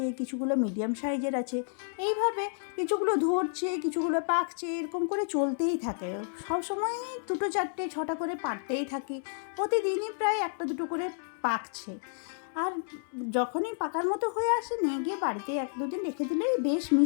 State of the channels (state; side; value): silent; right; digital silence